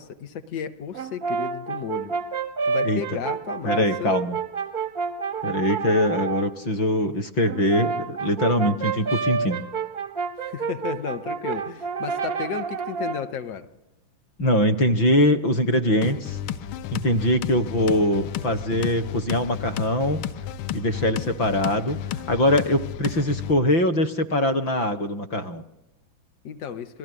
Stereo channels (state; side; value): late; right; 5.9 ms